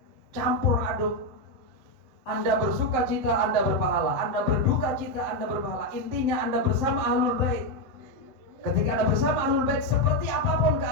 campur aduk. Anda bersuka cita, Anda berpahala. Anda berduka cita, Anda berpahala. Intinya Anda bersama Ahlul Bait. Ketika Anda bersama Ahlul Bait, seperti apapun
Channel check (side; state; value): left; late; 7.8 ms